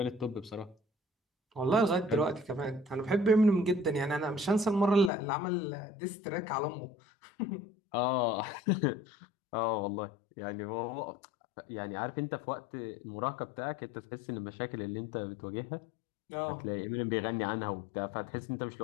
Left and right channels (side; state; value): right; drops out; at 5.1 s